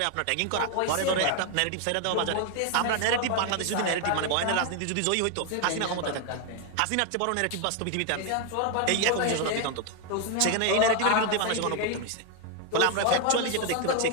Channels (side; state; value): both; different; correlation 0.01